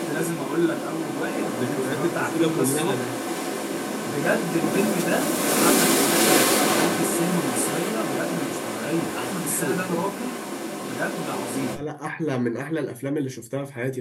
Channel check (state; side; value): identical; both; correlation 1.00